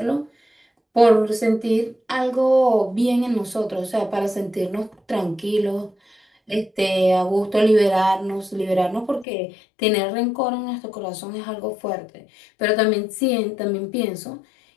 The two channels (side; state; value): right; drops out; at 9.2 s